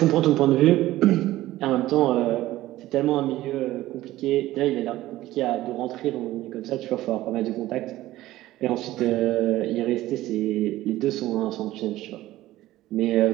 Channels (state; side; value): quieter; left; 15.8 dB